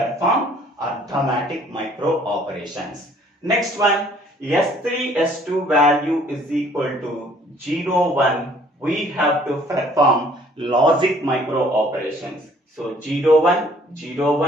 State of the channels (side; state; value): both; normal; correlation 0.58